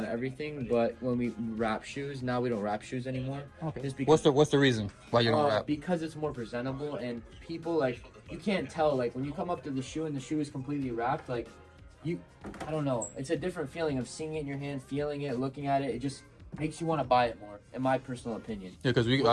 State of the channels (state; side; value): identical; both; correlation 1.00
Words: everything, but when we wrap shoes, now we don't wrap shoes anymore. Okay. Just because, What's the reason why you don't wrap? because it's more presentable, and people, like, you can't tell, like, when you come up to the shoe and the shoe is completely wrapped, like, I don't know. It's a different feeling of seeing it in your hand, feeling it, looking at it. It just makes you want to buy it more, in my personal opinion. Yeah, because